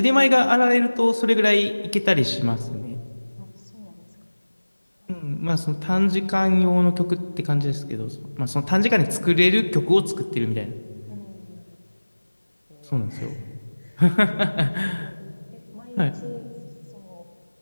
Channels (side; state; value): both; inverted; correlation -1.00